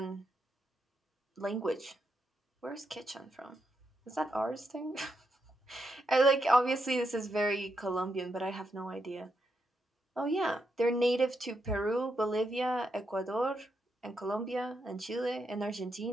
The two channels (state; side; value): normal; both; correlation 0.82